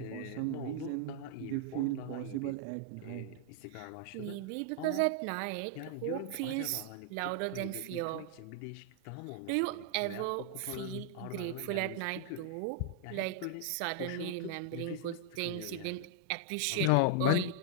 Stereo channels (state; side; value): different; both; correlation -0.01